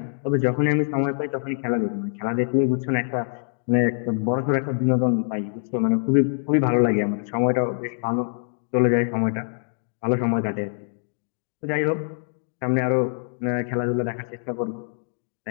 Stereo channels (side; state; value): right; silent; digital silence